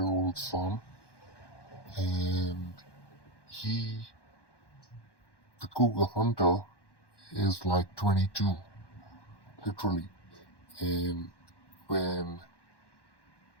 son, and he, the cougar hunter, is like 22, literally. And when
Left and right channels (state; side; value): late; right; 1.1 ms